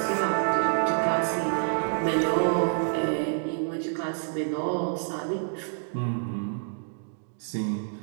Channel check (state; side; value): silent; left; digital silence